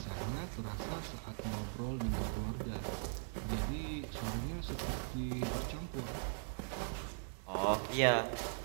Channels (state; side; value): silent; left; digital silence